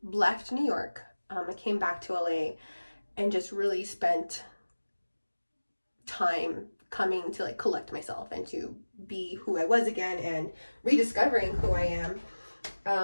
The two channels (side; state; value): both; inverted; correlation -1.00